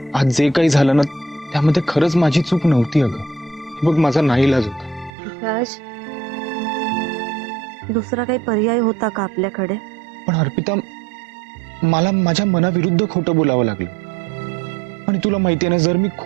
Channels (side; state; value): left; drops out; at 5.1 s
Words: आज जे काही झालं ना त्यामध्ये खरंच माझी चूक नव्हती अगं. हे बघ माझा नाईलाज होता. राज, दुसरा काही पर्याय होता का आपल्याकडे? पण अर्पिता, मला माझ्या मनाविरुद्ध खोटं बोलावं लागलं. आणि तुला माहितीये ना, जर मी